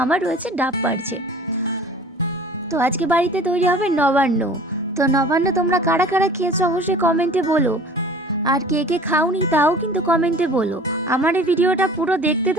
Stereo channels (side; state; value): both; normal; correlation 0.45